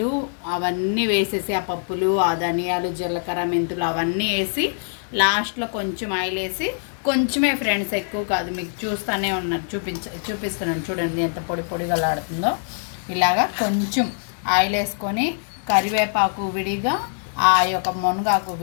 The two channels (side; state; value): right; silent; digital silence